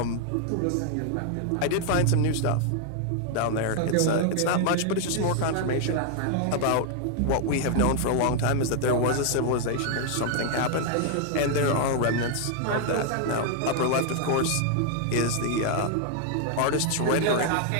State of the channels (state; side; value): different; both; correlation 0.00